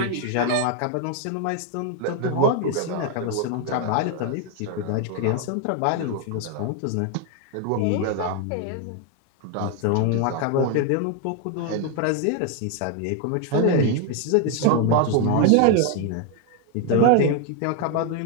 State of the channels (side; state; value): both; different; correlation 0.01